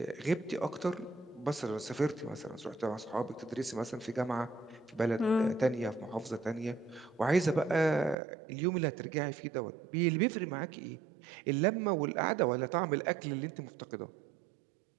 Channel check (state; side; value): drops out; left; at 8.2 s